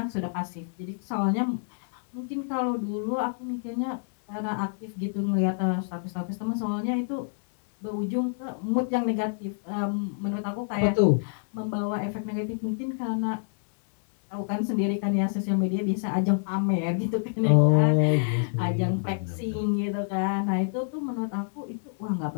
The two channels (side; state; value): right; silent; digital silence